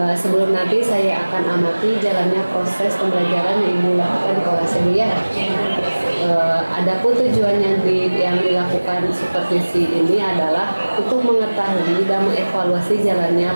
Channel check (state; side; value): inverted; both; correlation -1.00